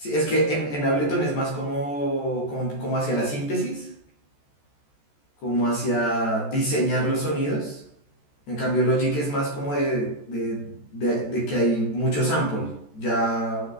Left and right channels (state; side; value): late; right; 14 ms